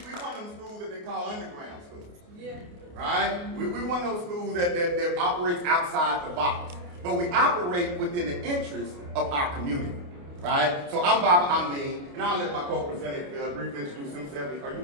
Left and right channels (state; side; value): late; left; 28 ms